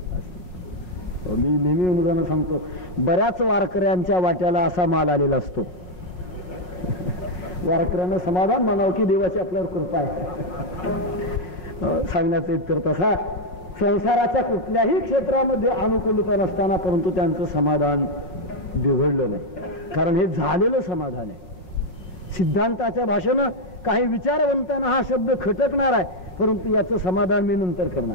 असती. मी नेहमी उदाहरण सांगतो, बऱ्याच वारकऱ्यांच्या वाट्याला असा माल आलेला असतो. वारकऱ्यांना समाधान म्हणावं की देवाची आपल्यावर कृपा आहे. सांगण्याचा इतकर तसा संसाराच्या कुठल्याही क्षेत्रामध्ये अनुकूलता नसताना परंतु त्यांचं समाधान बिघडलं नाही, कारण हे झालेलं समाधान आहे. सिद्धांताच्या भाषेनं काही विचारवंतांना हा शब्द खटकणार आहे, परंतु याचं समाधान मी नंतर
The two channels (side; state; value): right; late; 5.5 ms